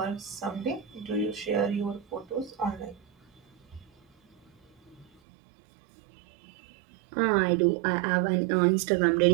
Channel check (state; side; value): drops out; left; at 5.1 s